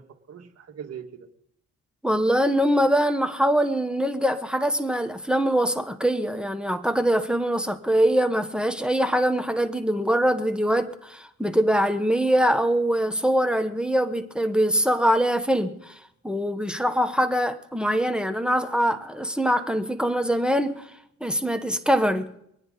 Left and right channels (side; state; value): both; normal; correlation 0.83